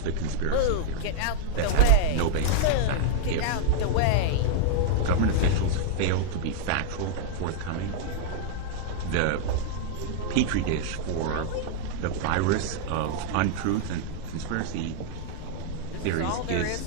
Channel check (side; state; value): both; different; correlation -0.01